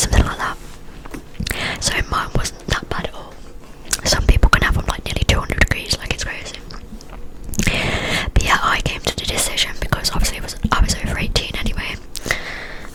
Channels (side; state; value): both; identical; correlation 1.00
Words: something like that. So mine wasn't that bad at all. Some people can have them like nearly 200 degrees, like it's crazy. But yeah, I came to the decision, because obviously I was over 18 anyway.